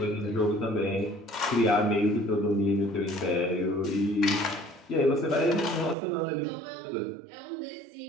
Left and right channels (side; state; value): left; drops out; at 6.0 s